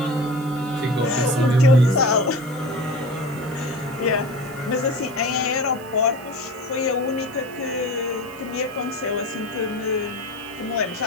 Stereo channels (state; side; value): noise; right; hiss, 22 dB below the sound